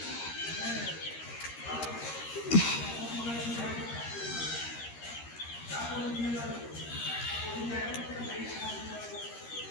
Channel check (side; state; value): right; late; 13 ms